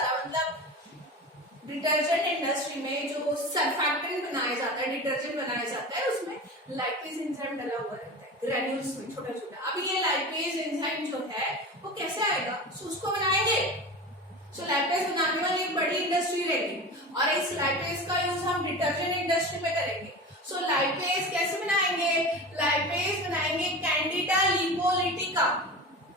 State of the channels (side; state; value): both; normal; correlation 0.30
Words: डिटर्जेंट इंडस्ट्री में जो सरफैक्टेंट बनाया जाता है, डिटर्जेंट बनाया जाता है, उसमें लाइपेज एंजाइम डला हुआ रहता है ग्रेन्यूल्स में छोटा छोटा। अब ये लाइपेज एंजाइम जो है वो कैसे आएगा, सो उसको बनाएंगे। सो लाइपेज बनाने वाली एक बड़ी इंडस्ट्री रहेगी और इस लाइपेज का यूज हम डिटर्जेंट इंडस्ट्री में करेंगे। सो लाइपेज कैसे बनाएंगे, लाइपेज बनाएंगे कैंडिडा लिपोलिटिका